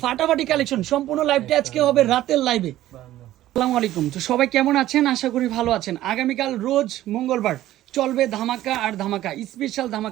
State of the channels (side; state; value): left; quieter; 14.2 dB